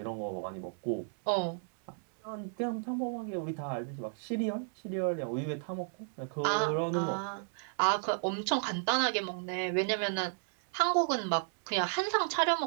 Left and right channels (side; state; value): left; silent; 56 dB below the other